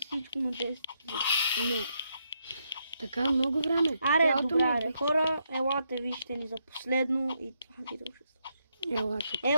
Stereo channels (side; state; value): both; inverted; correlation -0.78